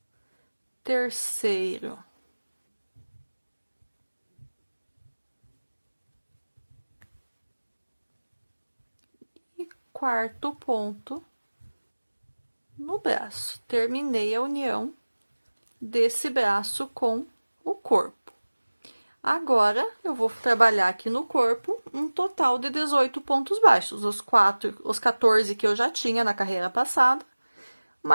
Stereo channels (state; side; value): inverted; both; correlation -1.00